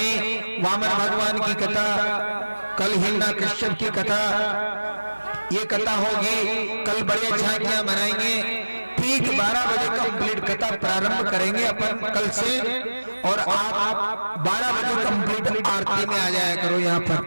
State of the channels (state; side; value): inverted; both; correlation -1.00